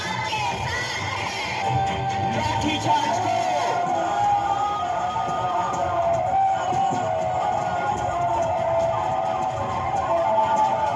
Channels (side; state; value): both; identical; correlation 1.00